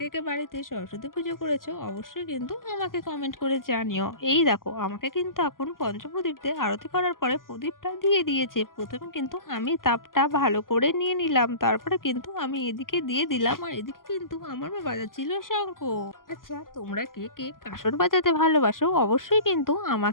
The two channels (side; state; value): right; late; 0.91 ms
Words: কে বাড়িতে সরস্বতী পুজো করেছো অবশ্যই কিন্তু আমাকে কমেন্ট করে জানিও। এই দেখো আমাকে কিন্তু এখন পঞ্চপ্রদীপ দিয়ে আরতি করার পরে প্রদীপটা দিয়ে দিয়েছে। প্রথমে কিন্তু আমি তাপটা ভালো করে নিয়ে নিলাম, তারপরে কিন্তু আমি এদিকে দিয়ে দিলাম, আর এদিকে কিন্তু আমার মা বাজাচ্ছিল শঙ্খ। আচ্ছা, তোমরা কে কে কাসর বাজাতে ভালোবাসো অবশ্যই কিন্তু